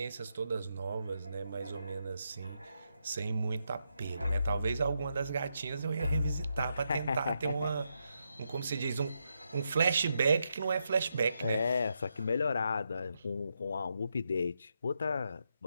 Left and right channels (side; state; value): both; inverted; correlation -0.82